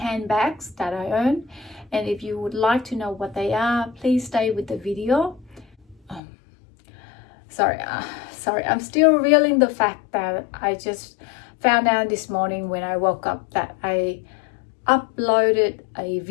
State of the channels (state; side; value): drops out; right; at 6.2 s